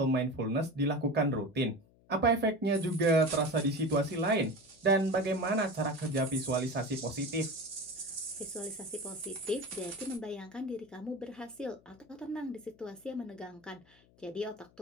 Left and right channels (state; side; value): noise; left; hum, 29 dB below the sound